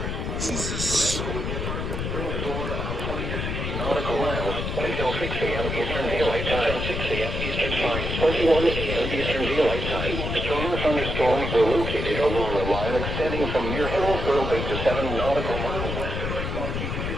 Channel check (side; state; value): left; noise; rumble, 3 dB below the sound